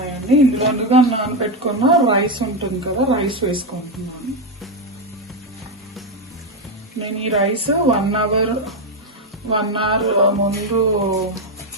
ఇందులో నానబెట్టుకున్న రైస్ ఉంటుంది కదా, రైస్ వేసుకుంటున్నాను. నేను ఈ రైస్ 1 అవర్ ముందు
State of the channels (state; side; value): normal; both; correlation 0.07